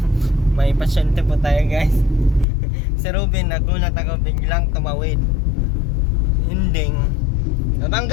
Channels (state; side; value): drops out; right; at 2.5 s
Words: May pasyente po tayo guys. Si Ruben, nagulat ako, biglang tumawid. Ending.